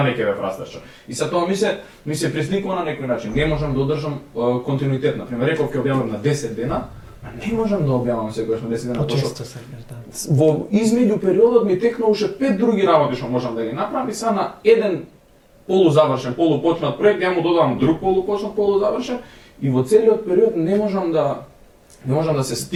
ќе ве фрастираше. И sa тоа ми се пресликува на некој начин. Не можам да одржам континуитет. Например, реков ќе објавам на 10 дена, а не можам да објавам секогаш на 10 дена. Почесто се да. Во измеѓу периодот ми текна уште 5 други работи што можам да ги направам и са на еден полузавршен, полупочнат проект, ја му додавам друг полупочнат, полузавршен и во целиот период не можам да се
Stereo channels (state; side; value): identical; both; correlation 1.00